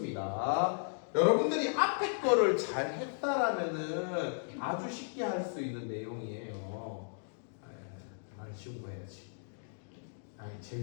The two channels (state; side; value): silent; right; digital silence